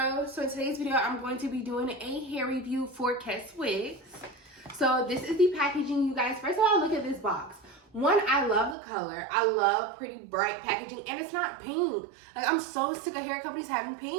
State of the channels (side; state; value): left; drops out; at 8.8 s